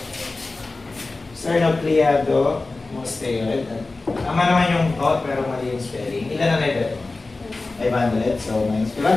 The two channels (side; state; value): right; quieter; 3.4 dB